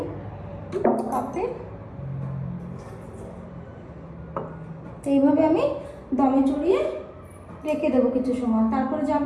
কাপে। এইভাবে আমি দমে চড়িয়ে রেখে দেবো কিছু সময়। তারপরে যাব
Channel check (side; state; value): both; identical; correlation 1.00